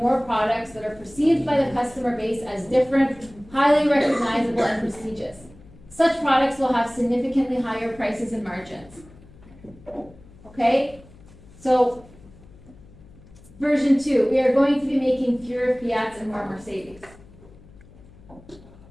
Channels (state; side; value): noise; left; hum, 23 dB below the sound